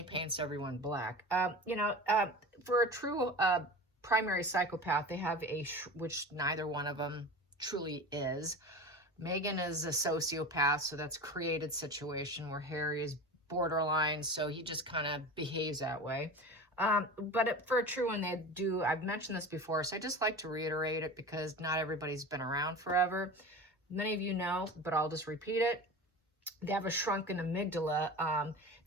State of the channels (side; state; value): both; normal; correlation 0.32